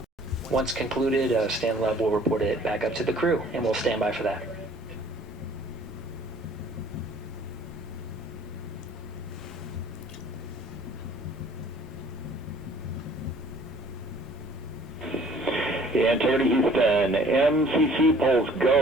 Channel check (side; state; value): both; normal; correlation 0.54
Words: Once concluded, Stan Love will report it back up to the crew, and we'll stand by for that. Integrity Houston, MCC polls